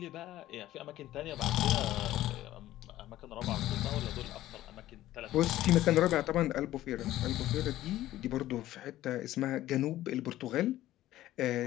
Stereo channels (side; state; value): right; quieter; 14.6 dB